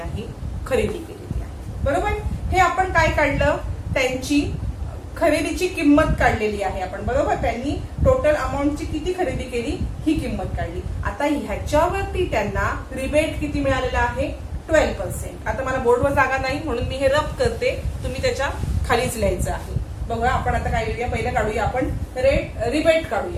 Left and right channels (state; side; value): identical; both; correlation 1.00